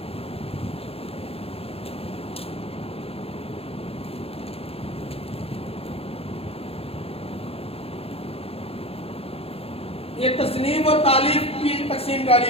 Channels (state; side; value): late; right; 0.28 ms